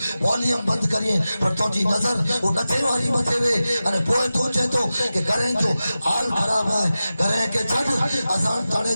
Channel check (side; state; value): both; inverted; correlation -0.94